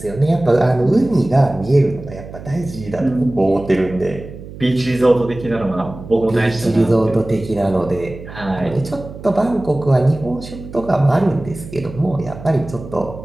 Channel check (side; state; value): right; noise; hum, 14 dB below the sound